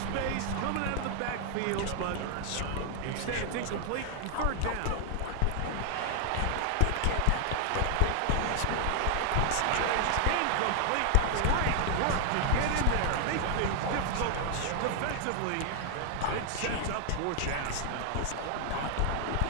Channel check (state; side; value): different; both; correlation 0.00